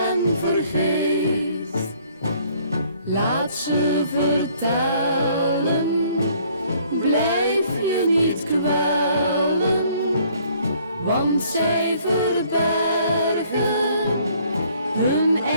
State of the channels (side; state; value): both; inverted; correlation -0.61